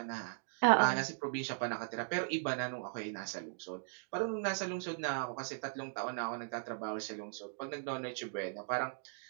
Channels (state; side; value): silent; left; digital silence